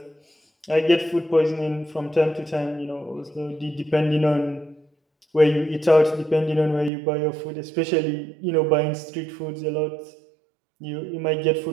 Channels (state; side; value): drops out; left; at 6.9 s